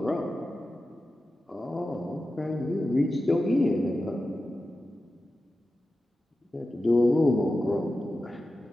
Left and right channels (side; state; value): both; normal; correlation 0.93